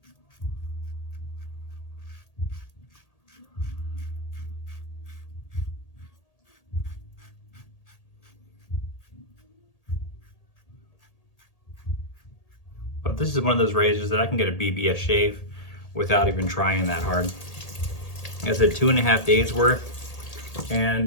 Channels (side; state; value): right; late; 1.8 ms